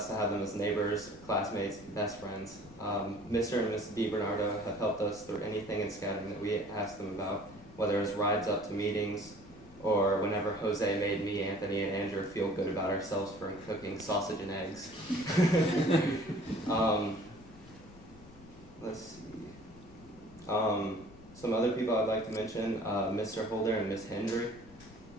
to have them as neighbors, classmates, best friends. Mr. and Mrs. DiBernardo have helped us through anything in scouting that we asked them about, whether it's rides up to meetings, or whenever Jose made me, Anthony, and Andrew feel good about ourselves for cooking sausage and eggs. Let's see. Some other people I'd like to mention, Mr. Holder and Miss Hendry.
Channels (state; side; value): noise; left; rumble, 20 dB below the sound